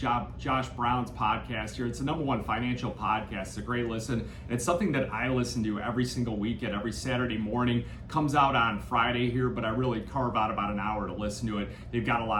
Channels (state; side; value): identical; both; correlation 1.00